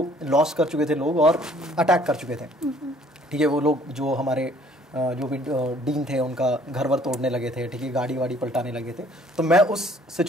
लॉस कर चुके थे लोग और अटैक कर चुके थे। ठीक है, वो लोग जो हमारे जो भी डीन थे उनका घर वर तोड़ने लगे थे, ठीक है, गाड़ी वाड़ी पलटाने लगे थे। तो मैं उस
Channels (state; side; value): normal; both; correlation 0.59